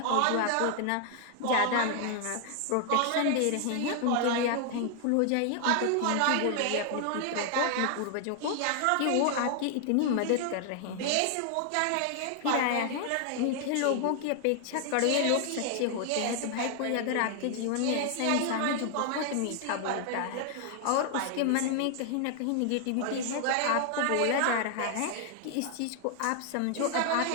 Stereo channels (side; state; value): both; different; correlation 0.00